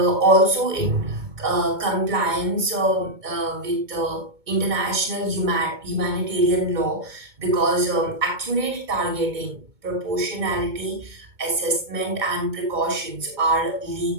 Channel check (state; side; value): late; left; 2.2 ms